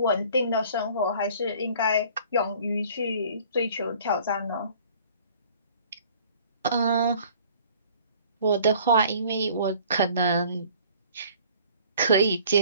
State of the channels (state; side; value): inverted; both; correlation -0.52